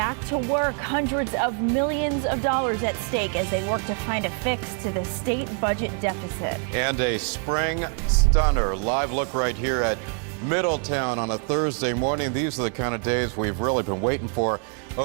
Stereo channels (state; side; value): quieter; left; 39.3 dB